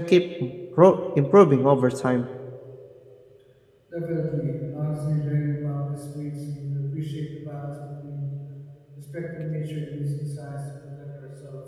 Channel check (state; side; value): identical; both; correlation 1.00